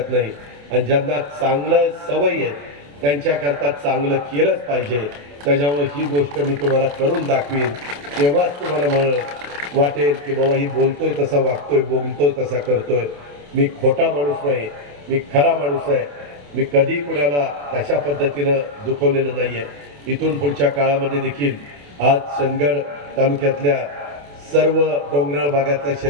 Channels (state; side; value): late; left; 28 ms